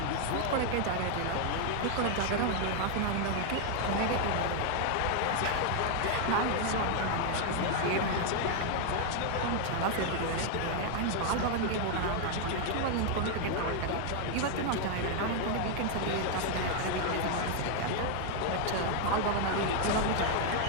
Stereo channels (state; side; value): different; both; correlation 0.00